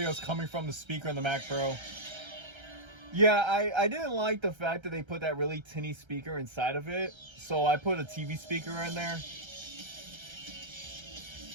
is coming from the speaker in the Mac Pro. Yeah, I didn't like the fact that they put that really tinny speaker inside of it, so I put a TV speaker in there.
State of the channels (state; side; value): late; left; 1.3 ms